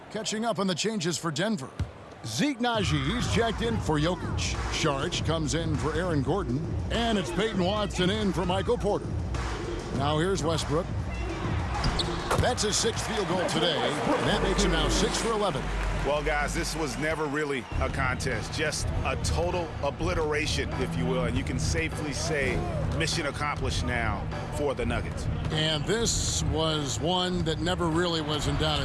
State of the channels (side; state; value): both; identical; correlation 1.00